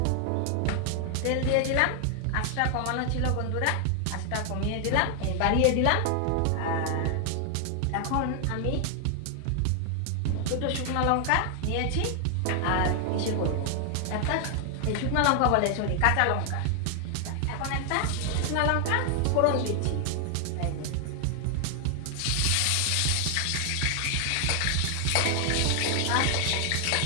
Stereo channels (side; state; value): both; different; correlation 0.00